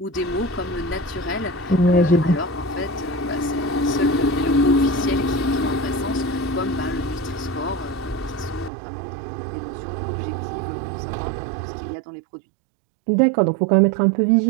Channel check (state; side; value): drops out; left; at 8.7 s